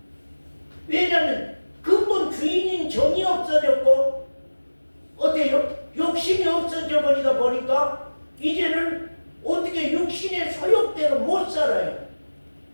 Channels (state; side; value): inverted; both; correlation -1.00